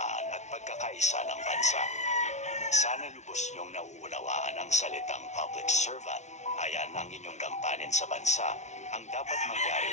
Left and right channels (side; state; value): right; late; 0.33 ms